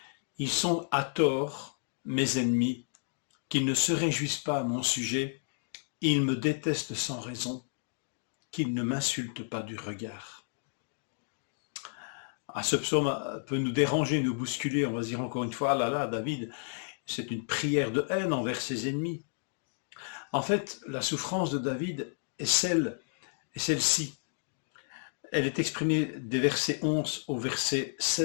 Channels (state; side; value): silent; right; digital silence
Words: Ils sont à tort mes ennemis, qu'ils ne se réjouissent pas à mon sujet, ils me détestent sans raison, qu'ils ne m'insultent pas du regard. Ce psaume peut nous déranger, nous bousculer, on va se dire encore une fois, ah là là, David, c'est une prière de haine envers ses ennemis. En fait, la souffrance de David est celle-ci. Elle est exprimée des versets 11 au verset